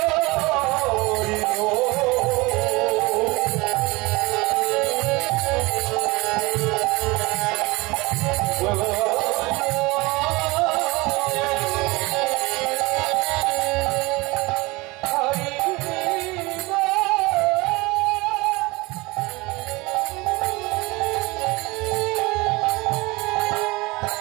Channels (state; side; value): quieter; left; 23.5 dB